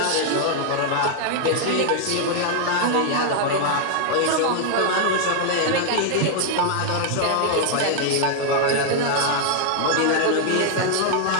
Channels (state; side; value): different; both; correlation 0.00